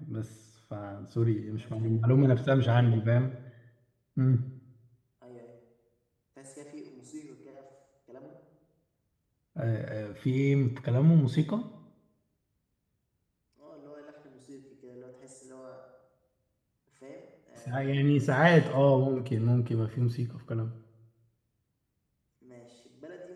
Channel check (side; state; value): both; identical; correlation 1.00